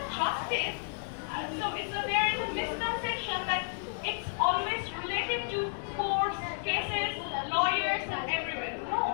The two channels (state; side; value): silent; right; 57 dB below the other